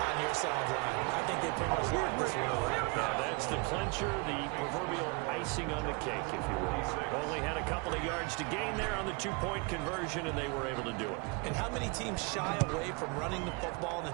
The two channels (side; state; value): left; quieter; 29.7 dB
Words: your sideline. I think they pretty much locked this one away. Now that's the clincher, the proverbial icing on the cake, if you will. Only had a couple of yards to gain there on the 2-point conversion, and they were able to do it. And how many teams shy away from running the football in